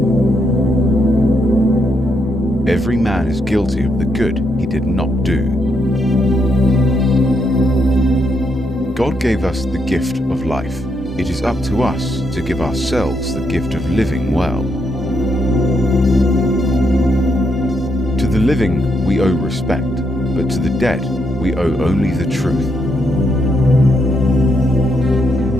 Every man is guilty of the good he did not do. God gave us the gift of life. It is up to us to give ourselves the gift of living well. To the living we owe respect, but to the dead we owe only the truth.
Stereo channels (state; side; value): normal; both; correlation 0.78